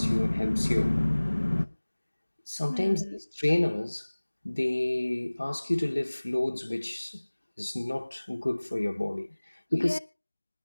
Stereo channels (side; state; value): both; inverted; correlation -1.00